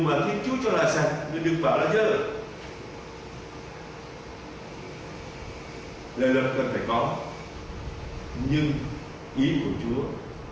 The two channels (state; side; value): identical; both; correlation 1.00